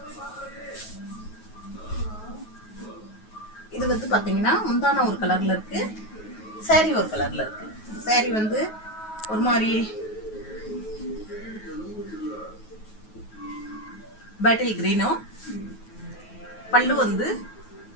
இது வந்து பார்த்தீங்கன்னா முந்தான ஒரு கலரில் இருக்குது, சாரீ ஒரு கலரில் இருக்குது. சாரீ வந்து ஒரு மாதிரி பாட்டில் க்ரீனும், பல்லு வந்து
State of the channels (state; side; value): late; right; 9.3 ms